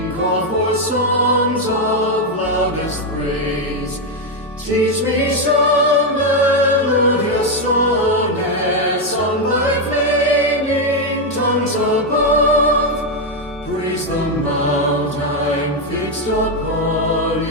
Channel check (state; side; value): normal; both; correlation 0.04